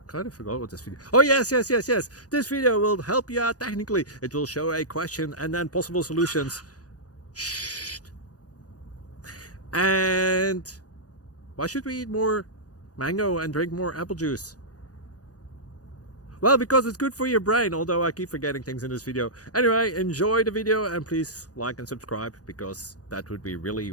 kind of forgot what this video. Oh, yes. This video will help you out technically. It will show a question and then possible solutions. Shh. And why should we eat more mango and drink more apple juice? Well, because it's good for your brain, although I keep forgetting things in this video. Anyway, enjoy the video and please like and subscribe, because that would be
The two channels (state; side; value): late; right; 0.68 ms